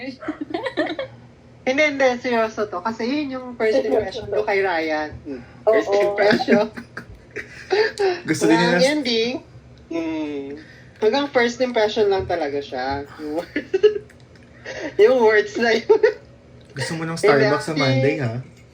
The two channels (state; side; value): identical; both; correlation 1.00